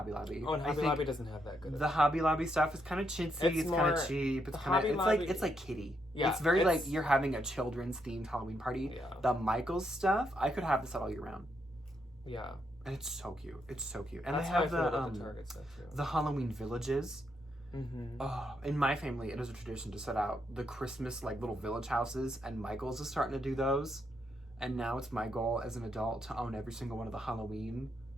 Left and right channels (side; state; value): both; normal; correlation 0.78